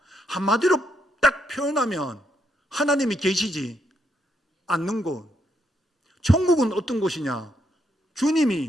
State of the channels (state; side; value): normal; both; correlation 0.77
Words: 한마디로 딱 표현하면 하나님이 계시지 않는 곳. 천국은 어떤 곳이냐?